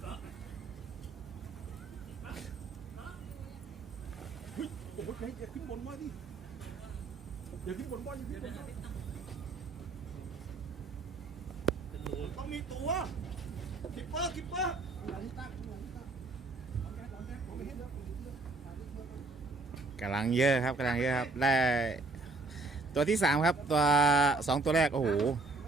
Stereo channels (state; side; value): quieter; left; 3.4 dB